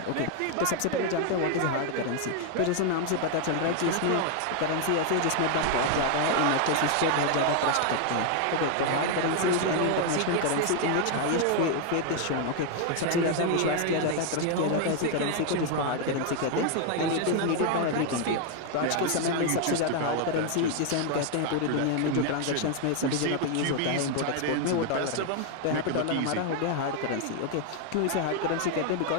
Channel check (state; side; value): different; both; correlation 0.00